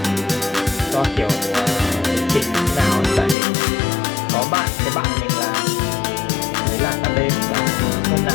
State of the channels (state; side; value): drops out; right; at 3.4 s